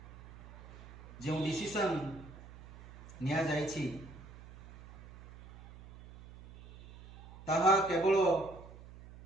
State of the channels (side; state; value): right; noise; hum, 17 dB below the sound